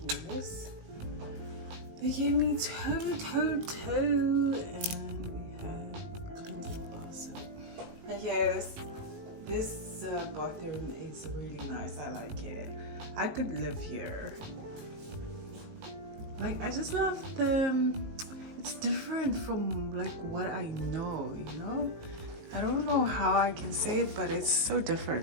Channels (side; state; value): left; late; 18 ms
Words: this. They gave me toe, and we have cleansing bar soap. And yeah, this bathroom is really nice. I like it. I could live here. Like, I just love it's different from like what I know, you know? I don't know how I can say it, but it's so